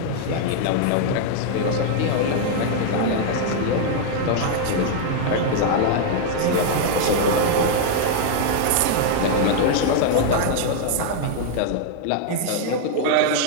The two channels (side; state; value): both; different; correlation 0.00